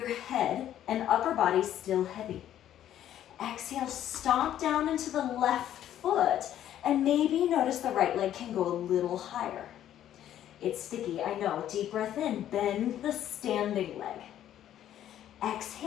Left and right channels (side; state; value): right; quieter; 11.4 dB